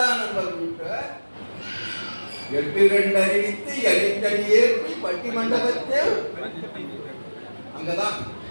நம்பர் வீட்டை 8-2 அறிவித்து எளித்தடி ஏற்றி பட்டி மண்டபத்தில் அங்கதான்,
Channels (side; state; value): both; inverted; correlation -1.00